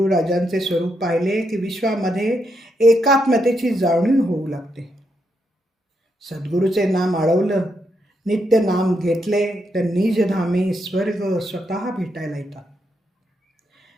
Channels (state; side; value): normal; both; correlation 0.80